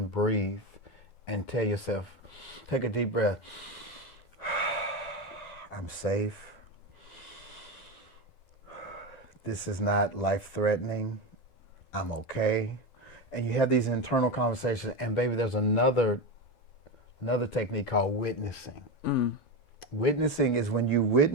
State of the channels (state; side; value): late; right; 12 ms